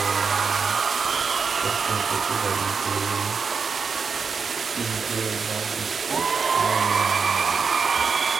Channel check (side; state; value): left; quieter; 5.5 dB